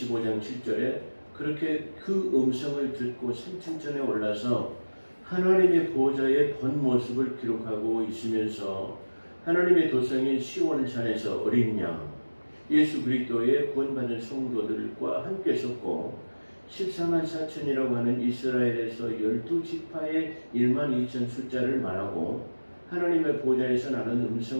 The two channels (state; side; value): inverted; both; correlation -1.00